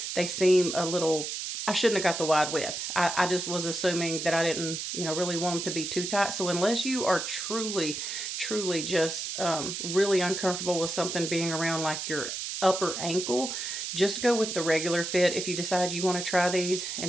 they seem a little... I shouldn't have got the wide width. I just was assuming that I didn't, really want them to be too tight. So unless you are truly just really uncomfortable with something being around like your upper ankle, just go with the regular fit if you decide you want to try these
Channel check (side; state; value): right; noise; hiss, 4 dB below the sound